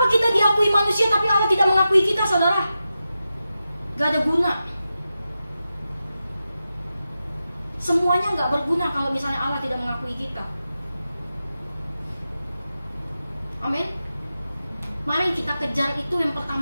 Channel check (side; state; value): both; inverted; correlation -0.91